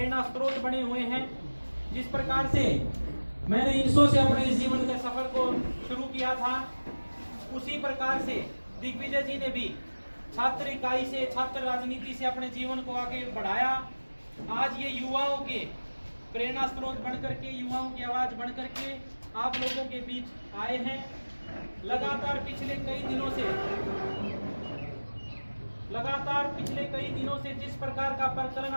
स्रोत बने हुए हैं। जिस प्रकार से मैंने 300 से अपने इस जीवन के सफर को शुरू किया था, उसी प्रकार से दिग्विजय जी ने भी छात्र इकाई से, छात्र राजनीति से अपने जीवन को आगे बढ़ाया। आज ये युवाओं के प्रेरणा स्रोत बन करके, युवाओं की आवाज बन करके आप लोगों के बीच आए हैं। लगातार पिछले कई दिनों से जिस प्रकार का प्रकरण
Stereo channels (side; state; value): both; inverted; correlation -1.00